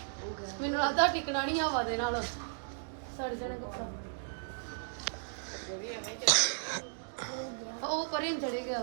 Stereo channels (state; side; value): silent; left; digital silence